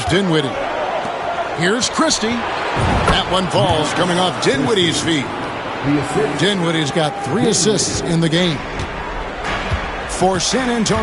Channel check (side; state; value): both; identical; correlation 1.00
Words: Dinwiddie. Here's Christie. That one falls coming off Dinwiddie's feet. Dinwiddie's got 3 assists in the game. For San